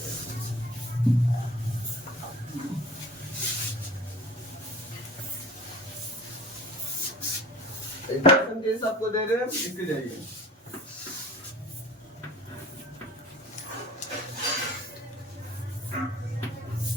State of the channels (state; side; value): normal; both; correlation 0.43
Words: आपको दे रहे हैं, लिखते जाइए।